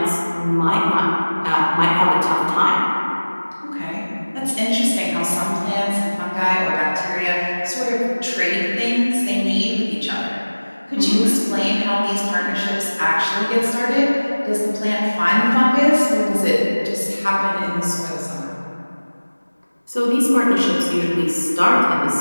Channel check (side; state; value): both; inverted; correlation -1.00